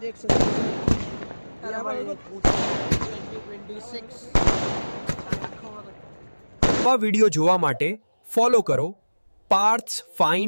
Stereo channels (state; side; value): inverted; both; correlation -1.00